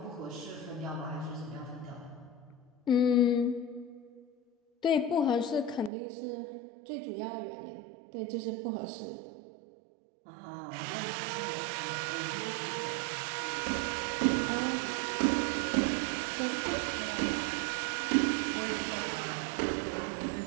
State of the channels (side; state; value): left; drops out; at 5.9 s